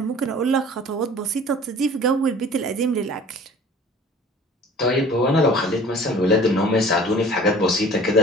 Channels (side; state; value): both; normal; correlation 0.46